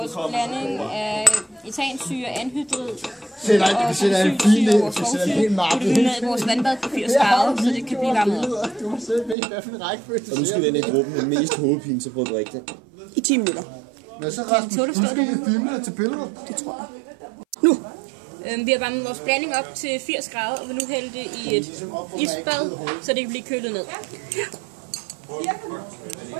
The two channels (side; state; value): left; drops out; at 9.3 s